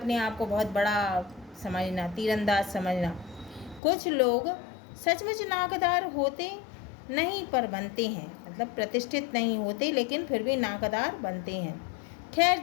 आप को बहुत बड़ा समझना, तीरंदाज समझना। कुछ लोग सचमुच नाकदार होते नहीं पर बनते हैं, मतलब प्रतिष्ठित नहीं होते लेकिन फिर भी नाकदार बनते हैं। खैर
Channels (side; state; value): right; drops out; at 3.8 s